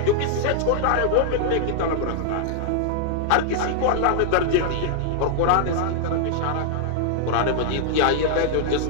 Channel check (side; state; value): both; different; correlation -0.01